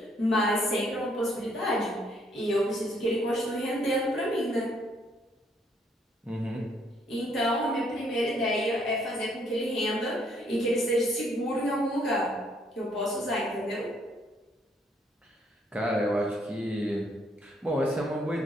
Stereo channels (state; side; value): normal; both; correlation 0.68